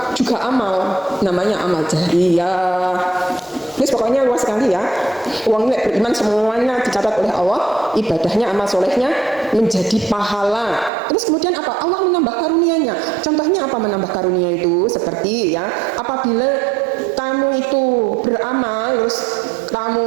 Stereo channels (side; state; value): left; drops out; at 10.9 s